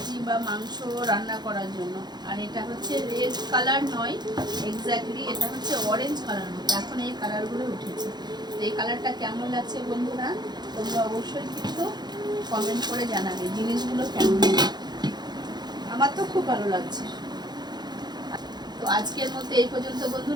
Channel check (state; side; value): late; left; 0.20 ms